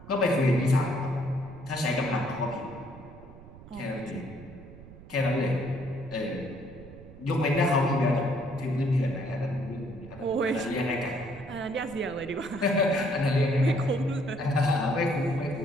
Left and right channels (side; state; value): right; noise; rumble, 18 dB below the sound